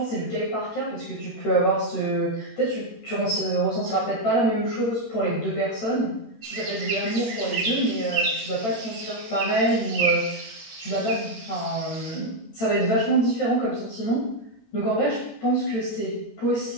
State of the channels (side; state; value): right; late; 13 ms